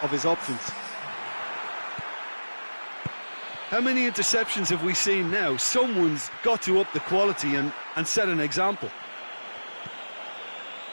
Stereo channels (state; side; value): inverted; both; correlation -1.00